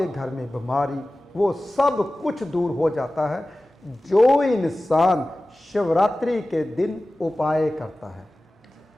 घर में बीमारी, वो सब कुछ दूर हो जाता है जो इंसान शिवरात्रि के दिन उपाय करता है।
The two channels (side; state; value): both; normal; correlation 0.96